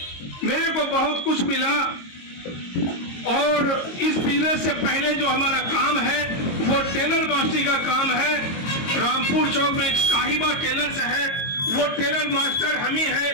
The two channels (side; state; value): right; late; 22 ms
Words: मेरे को बहुत कुछ मिला और इस बिजनेस से पहले जो हमारा काम है वो टेलर मास्टरी का काम है। रामपुर चौक में साहिबा टेलर्स है, वो टेलर मास्टर हम ही